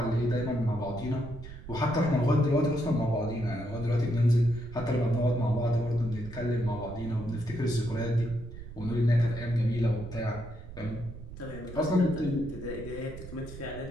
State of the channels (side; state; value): right; noise; rumble, 13 dB below the sound